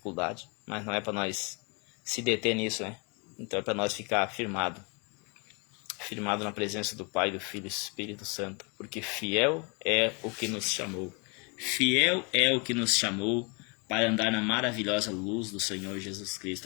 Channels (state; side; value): quieter; right; 32.3 dB